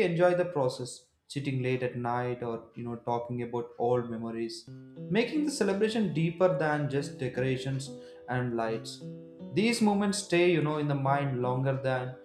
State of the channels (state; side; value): identical; both; correlation 1.00